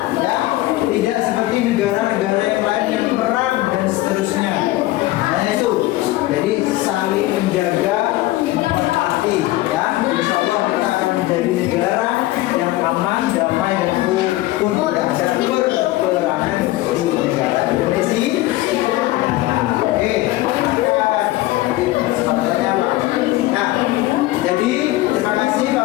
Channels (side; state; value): right; quieter; 17.4 dB